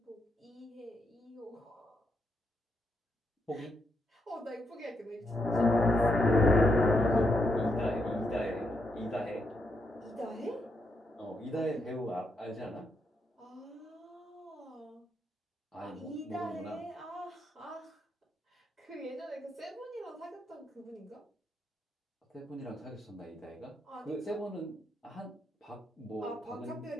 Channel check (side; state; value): both; normal; correlation 0.80